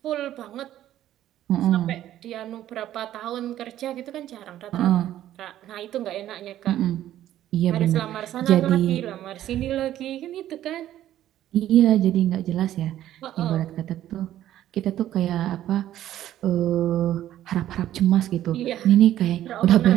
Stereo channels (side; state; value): left; quieter; 12.6 dB